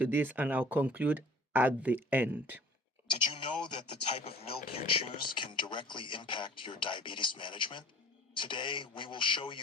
this, and I'll conclude at the end. Did you know that the type of milk you choose can directly impact your diabetes management? Today, we will show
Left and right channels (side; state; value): both; normal; correlation 0.49